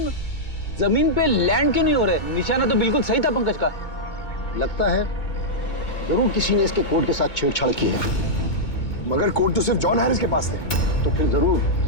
जमीन पे लैंड क्यों नहीं हो रहे? निशाना तो बिल्कुल सही था पंकज का। लगता है जरूर किसी ने इसके कोड के साथ छेड़छाड़ की है। मगर कोड तो सिर्फ जॉन हैरिस के पास थे। तो फिर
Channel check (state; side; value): late; right; 2.2 ms